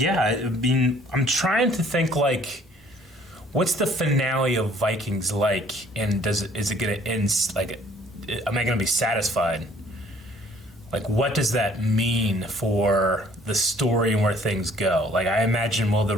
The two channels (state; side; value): normal; both; correlation 0.58